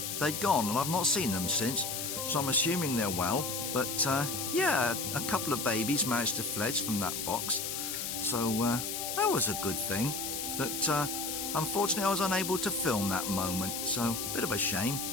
they'd gone, and I've not seen them since. so I'm assuming they're well. But yeah, a couple of babies managed to fledge from that box, so that was a good thing. But unfortunately I was unable to film that moment, so a bit of a shame,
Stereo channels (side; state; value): left; noise; hiss, 3 dB below the sound